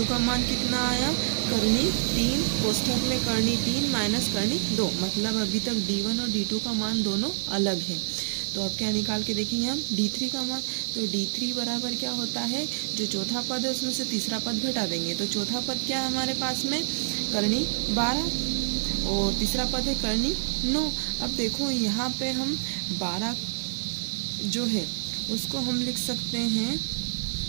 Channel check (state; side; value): silent; left; 60 dB below the other